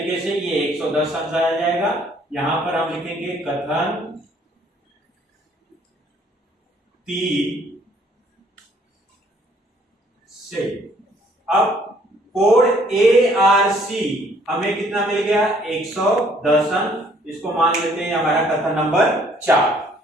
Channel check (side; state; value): both; normal; correlation 0.62